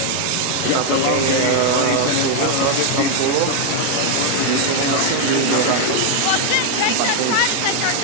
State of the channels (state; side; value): different; both; correlation 0.00